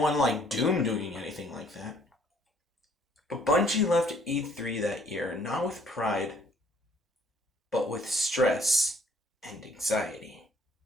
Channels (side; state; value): both; normal; correlation 0.61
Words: like Doom doing anything like that. But Bungie left E3 that year not with pride, but with stress and anxiety.